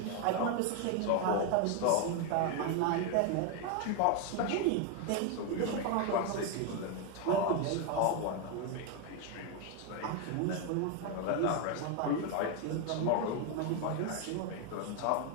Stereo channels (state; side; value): different; both; correlation 0.01